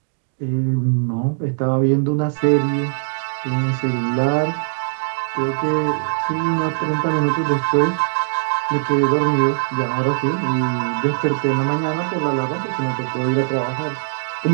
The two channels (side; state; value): left; silent; digital silence